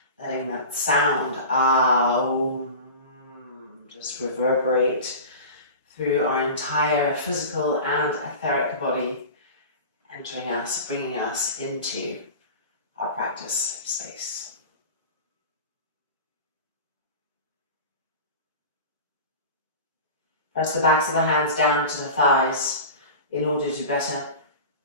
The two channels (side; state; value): both; inverted; correlation -0.33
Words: letting that sound Om just reverberate through our entire physical and etheric body, entering us, bringing us into our practice space. Press the backs of the hands down to the thighs in order to better